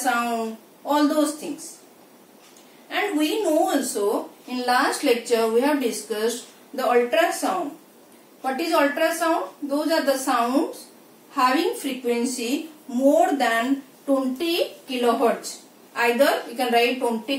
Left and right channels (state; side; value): identical; both; correlation 1.00